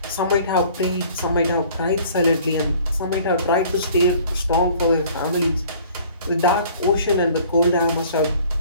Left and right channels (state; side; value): inverted; both; correlation -0.52